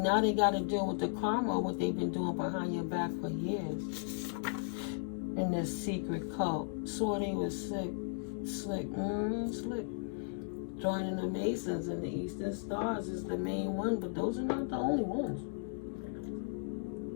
now they got to deal with the karma of what they've been doing behind your back for years. In this secret cult. Swore they was slick. Joining the Masons and the Eastern Stars is the main one, but those are not the only ones.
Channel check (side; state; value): right; silent; digital silence